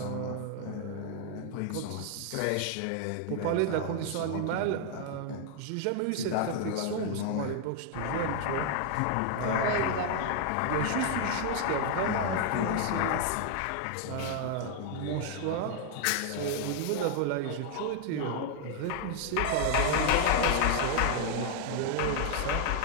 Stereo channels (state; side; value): different; both; correlation 0.00